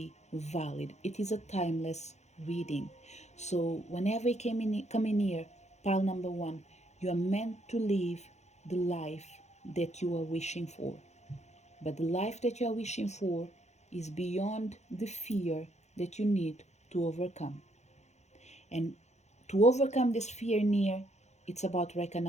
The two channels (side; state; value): right; late; 0.33 ms